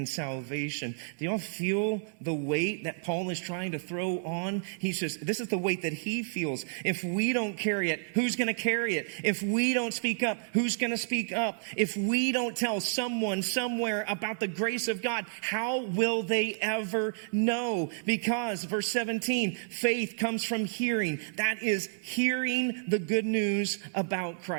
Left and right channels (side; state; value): left; silent; digital silence